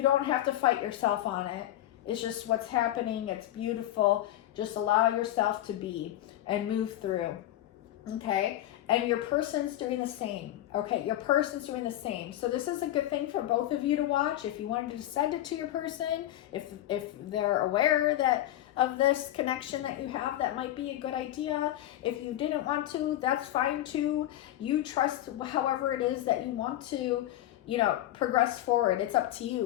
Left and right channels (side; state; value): right; quieter; 13.7 dB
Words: don't have to fight yourself on it. It's just what's happening. It's beautiful. Just allow yourself to be and move through. Okay, and your person's doing the same. Okay, your person's doing the same. So this is a good thing for both of you to watch. If you wanted to send it to your person, if they're aware that of this connection that you have, that might be a good idea. If you didn't want to, that's fine too. You trust however it is that you want to, progress forward. It's up to